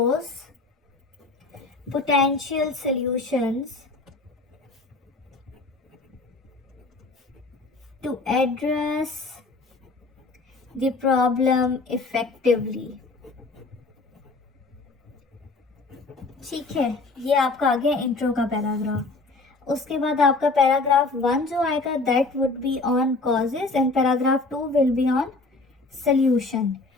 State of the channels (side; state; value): right; quieter; 3.5 dB